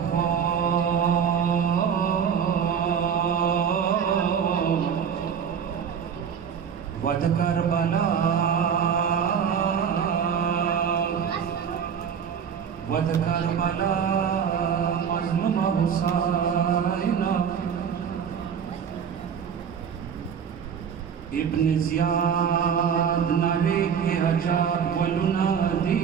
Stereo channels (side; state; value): left; quieter; 7.6 dB